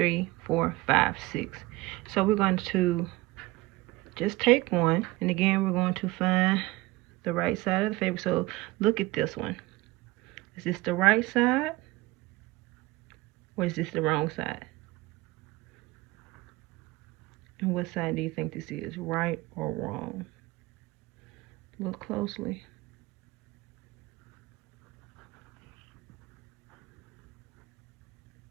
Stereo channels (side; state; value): left; quieter; 20.5 dB